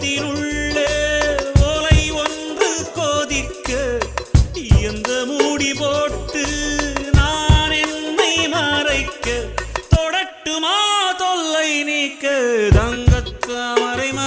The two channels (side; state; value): both; identical; correlation 1.00